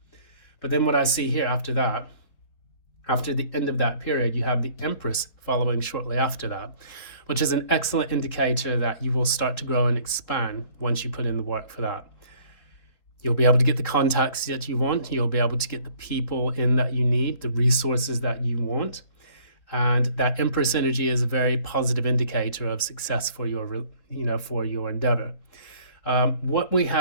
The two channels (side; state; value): right; late; 3.7 ms